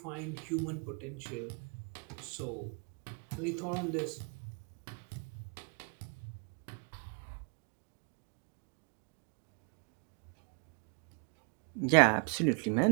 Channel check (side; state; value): left; quieter; 39.3 dB